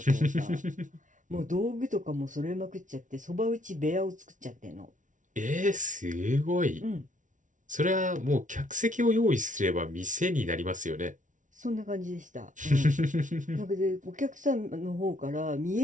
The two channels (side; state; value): left; late; 0.37 ms